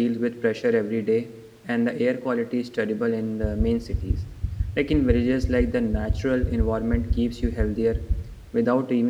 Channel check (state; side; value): identical; both; correlation 1.00